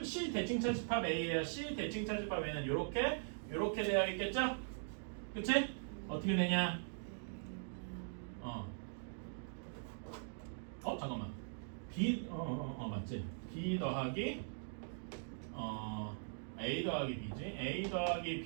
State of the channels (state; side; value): silent; left; digital silence